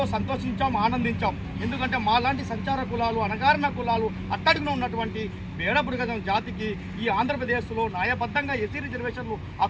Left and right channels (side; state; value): both; identical; correlation 1.00